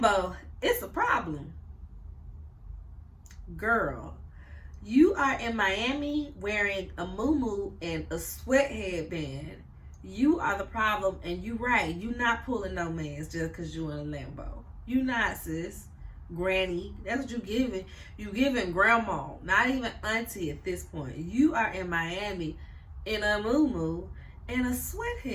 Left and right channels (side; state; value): both; identical; correlation 1.00